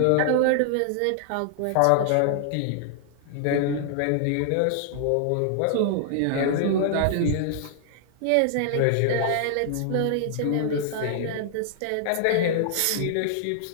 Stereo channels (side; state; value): both; different; correlation -0.01